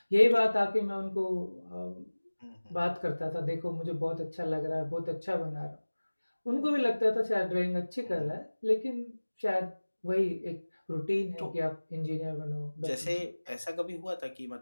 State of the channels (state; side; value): inverted; both; correlation -1.00